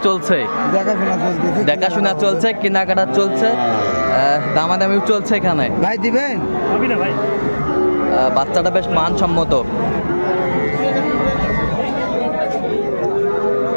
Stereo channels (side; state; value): both; inverted; correlation -1.00